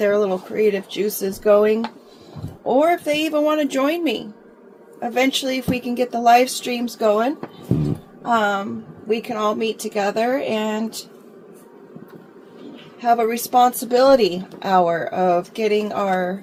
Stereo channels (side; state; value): both; identical; correlation 1.00